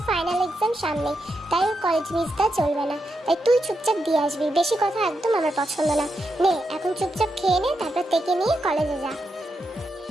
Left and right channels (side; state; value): both; normal; correlation 0.84